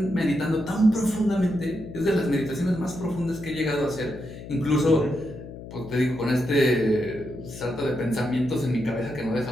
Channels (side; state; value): left; noise; hum, 13 dB below the sound